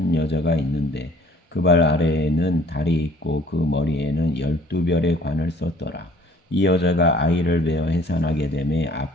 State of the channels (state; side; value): normal; both; correlation 0.55